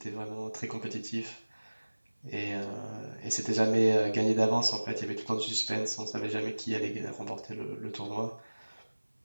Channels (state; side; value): inverted; both; correlation -1.00